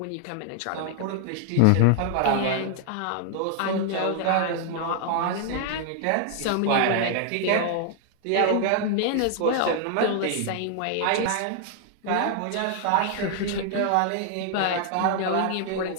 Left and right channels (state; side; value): different; both; correlation 0.00